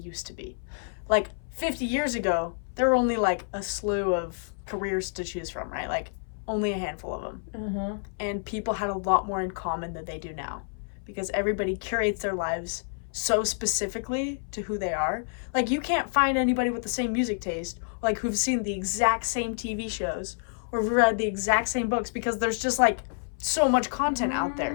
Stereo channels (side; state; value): right; silent; 59 dB below the other